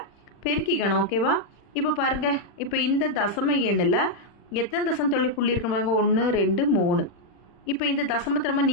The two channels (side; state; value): right; late; 40 ms